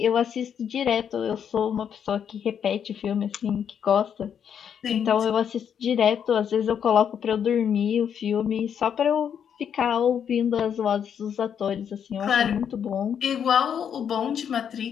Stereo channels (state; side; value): quieter; right; 8.2 dB